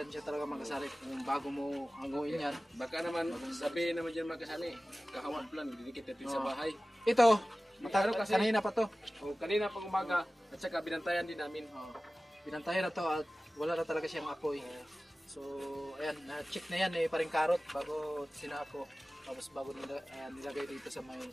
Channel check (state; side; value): normal; both; correlation 0.97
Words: talaga makasali kung bago mo hanguin yan. Baka naman, sabi naman dyan magkasali, kahawat lang, didikit natin sa bahay. Ito, Ano kasi- kanina pa to. O, kanina pang umaga, at saka binantayan din namin. Pinantayan na to at wala na talaga siyang apoy. So, ayan, na-check na yan eh, Paring Karot bago sinako. Tapos bago nilagay dito sa may